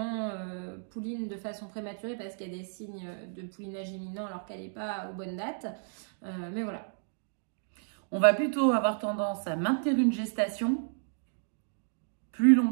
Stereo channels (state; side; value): silent; left; digital silence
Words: pouline de façon prématurée parce qu'il y a des signes de poulinage imminent alors qu'elle n'est pas aux bonnes dates, mais voilà. On va plutôt avoir tendance à maintenir une gestation plus